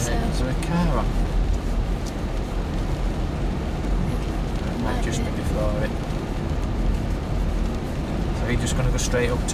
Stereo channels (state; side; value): identical; both; correlation 1.00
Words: is there a car on? It might just be before it. So you're just going to go straight up